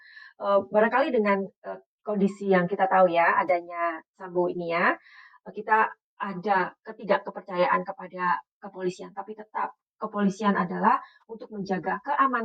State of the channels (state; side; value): identical; both; correlation 1.00